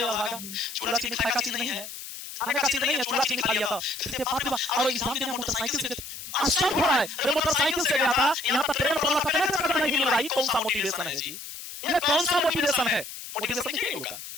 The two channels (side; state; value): left; noise; hiss, 11 dB below the sound